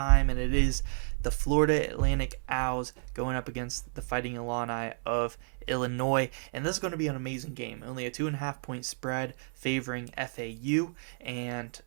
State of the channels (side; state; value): left; silent; 57 dB below the other